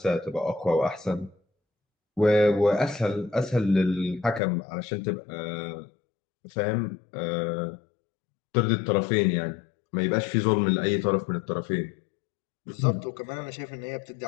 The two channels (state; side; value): drops out; right; at 4.4 s